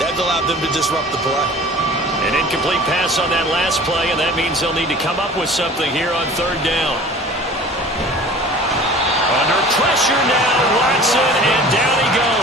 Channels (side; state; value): both; normal; correlation 0.44